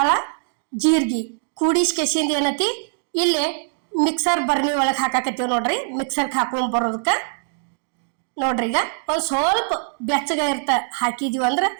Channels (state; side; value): silent; left; digital silence